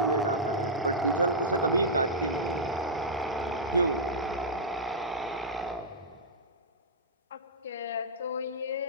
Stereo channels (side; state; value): both; normal; correlation -0.12